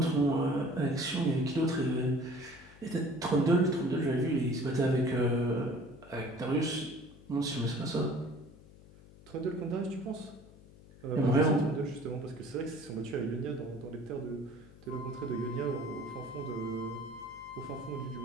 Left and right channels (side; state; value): left; noise; hum, 21 dB below the sound